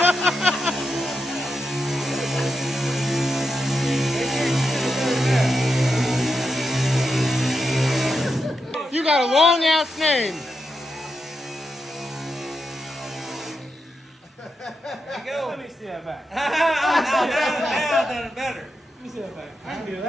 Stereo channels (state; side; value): normal; both; correlation 0.86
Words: You got a long ass name. There you go. Let me see that back. Now I've done it better. Let me see that back. I can do